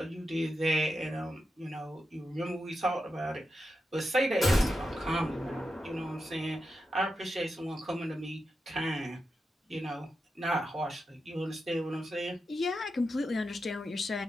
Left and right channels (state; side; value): normal; both; correlation 0.88